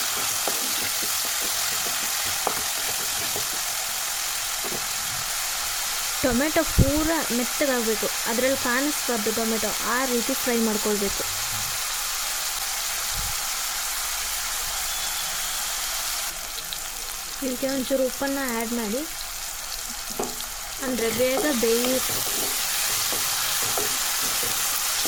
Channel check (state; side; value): identical; both; correlation 1.00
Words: ಟೊಮೆಟೊ ಪೂರ ಮೆತ್ತಗಾಗಬೇಕು. ಅದರಲ್ಲಿ ಕಾಣಿಸ್ಬಾರ್ದು ಟೊಮೆಟೊ, ಆ ರೀತಿ ಫ್ರೈ ಮಾಡ್ಕೊಳ್ಬೇಕು. ಇದಕ್ಕೆ ಒಂಚೂರು ಉಪ್ಪನ್ನು ಆ್ಯಡ್ ಮಾಡಿ, ಅಂದರೆ ಬೇಗ ಬೇಯುತ್ತೆ.